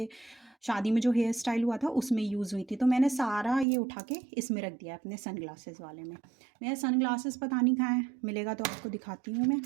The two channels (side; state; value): left; drops out; at 3.7 s